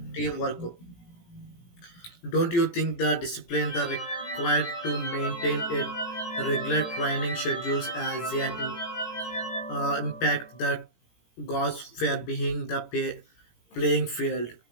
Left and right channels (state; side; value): late; right; 17 ms